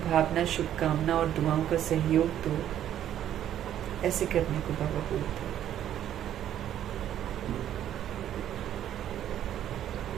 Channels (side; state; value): left; quieter; 11.0 dB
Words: भावना शुभकामना और दुआओं का सहयोग दो। ऐसे करने को बाबा बोलते हैं।